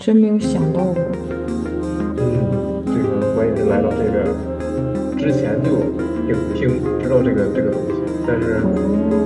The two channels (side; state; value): both; identical; correlation 1.00